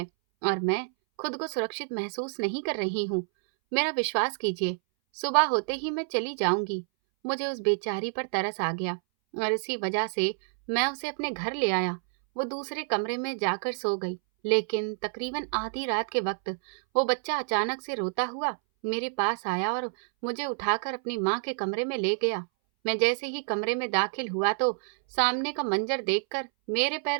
और मैं खुद को सुरक्षित महसूस नहीं कर रही हूँ। मेरा विश्वास कीजिए, सुबह होते ही मैं चली जाऊंगी। मुझे उस बेचारी पर तरस आ गया और इसी वजह से मैं उसे अपने घर ले आया। वो दूसरे कमरे में जाकर सो गई, लेकिन तकरीबन आधी रात के वक्त वो बच्चा अचानक से रोता हुआ मेरे पास आया और मुझे उठाकर अपनी माँ के कमरे में ले गया। मैं जैसे ही कमरे में दाखिल हुआ तो सामने का मंजर देखकर मेरे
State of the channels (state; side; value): silent; left; 59 dB below the other